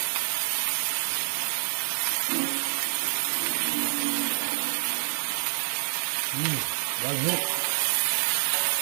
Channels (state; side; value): silent; left; digital silence